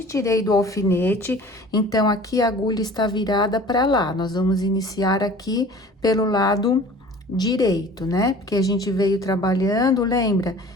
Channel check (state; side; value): normal; both; correlation 0.45